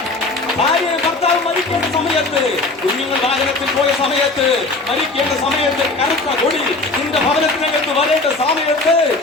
ഭാര്യ ഭർത്താവ് മരിക്കേണ്ട സമയത്ത്, കുഞ്ഞുങ്ങൾ വാഹനത്തിൽ പോയ സമയത്ത്, മരിക്കേണ്ട സമയത്ത് കറുത്ത കൊടി നിന്റെ ഭവനത്തിനകത്ത് വരേണ്ട സമയത്ത്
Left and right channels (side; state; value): right; quieter; 3.2 dB